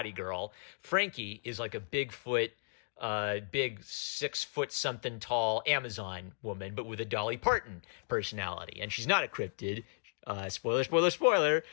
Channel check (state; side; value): silent; right; digital silence